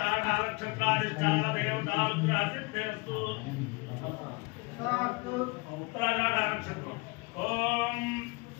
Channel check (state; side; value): quieter; right; 27.7 dB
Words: నక్షత్రాధిష్టాన దేవతానుగ్రహసిద్ధిరస్తు. ఉత్తరాషాఢ నక్షత్రం. ఓం